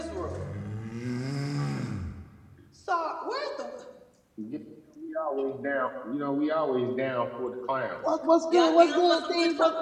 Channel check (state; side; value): identical; both; correlation 1.00